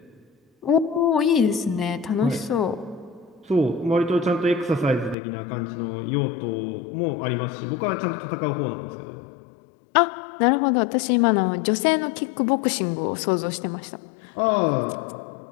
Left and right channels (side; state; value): right; drops out; at 5.2 s